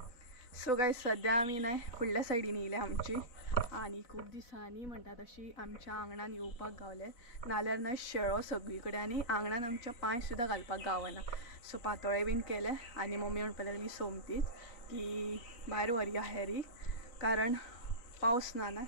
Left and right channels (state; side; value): late; right; 4.0 ms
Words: सो गायज सद्या आमी न्हय फुडल्या सायडीन येयल्या आमची आनी खूब दिसांनी म्हणटा तशी आमच्या आंगणान येवपाक गावले. नाल्यार न्हय शेळो सगळी कडेन आनी आंगणान आमच्या पांय सुद्दां घालपाक गावना. सो पातोळे बीन केले आनी मम्मी म्हणपाक लागली सोमतीच की भायर व्हरया हेरी कारण पावस ना न्हय.